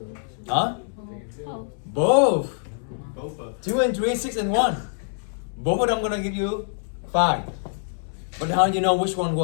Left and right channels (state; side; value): silent; right; 62 dB below the other